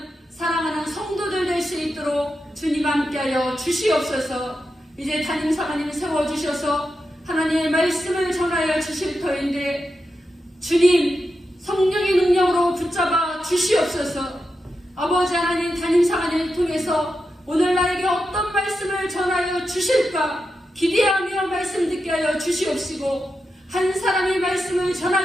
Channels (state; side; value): normal; both; correlation 0.88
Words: 사랑하는 성도들 될 수 있도록 주님 함께하여 주시옵소서. 이제 담임사관님 세워주셔서 하나님의 말씀을 전하여 주실 터인데 주님 성령의 능력으로 붙잡아 주시옵소서. 아버지 하나님, 담임사관님을 통해서 오늘 나에게 어떤 말씀을 전하여 주실까 기대하며 말씀 듣게 하여 주시옵시고, 한 사람이 말씀을